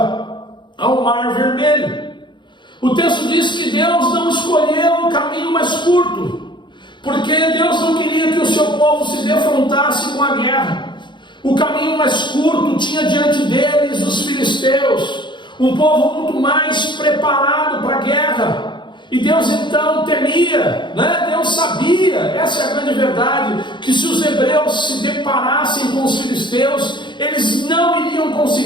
ao Mar Vermelho. O texto diz que Deus não escolheu o caminho mais curto, porque Deus não queria que o seu povo se defrontasse com a guerra. O caminho mais curto tinha diante deles os filisteus, um povo muito mais preparado para a guerra. E Deus então temia, Deus sabia, essa é a grande verdade, que se os hebreus se deparassem com os filisteus, eles não iriam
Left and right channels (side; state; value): right; late; 0.23 ms